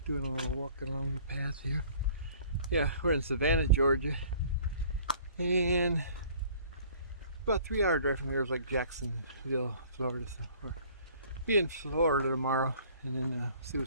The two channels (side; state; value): both; inverted; correlation -0.53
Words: doing a little walking along the path here. Yeah, we're in Savannah, Georgia, and about a 3-hour drive from here is like Jacksonville, Florida. So we're be in Florida tomorrow, and then see